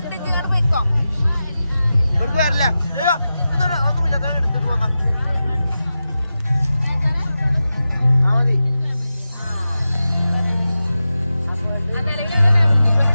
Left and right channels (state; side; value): inverted; both; correlation -0.93